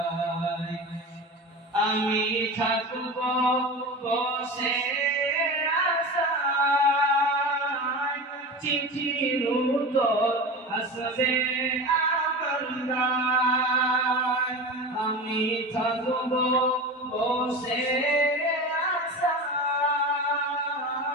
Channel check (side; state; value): both; normal; correlation 0.28